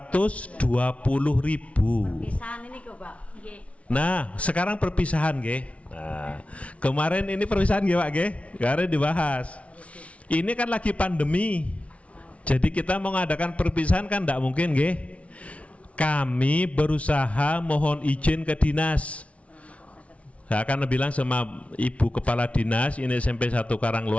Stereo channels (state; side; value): late; right; 0.064 ms